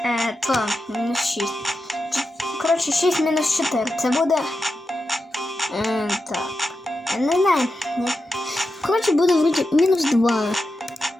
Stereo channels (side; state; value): both; normal; correlation 0.89